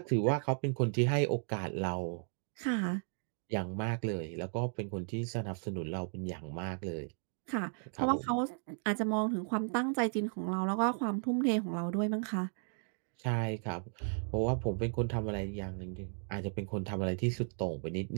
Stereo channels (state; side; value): silent; left; 54 dB below the other